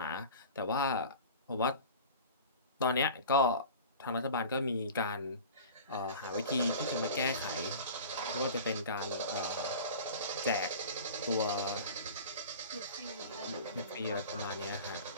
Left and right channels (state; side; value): inverted; both; correlation -0.37